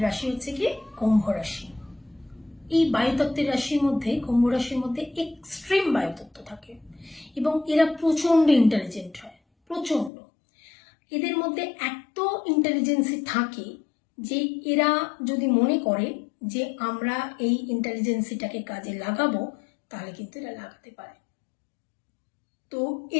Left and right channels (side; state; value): right; drops out; at 10.1 s